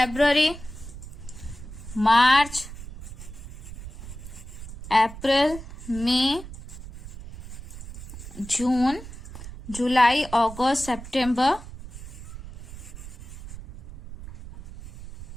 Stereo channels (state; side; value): noise; right; rumble, 13 dB below the sound